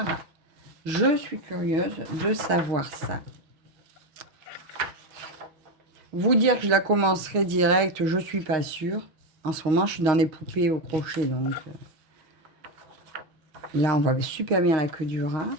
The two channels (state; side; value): late; left; 6.0 ms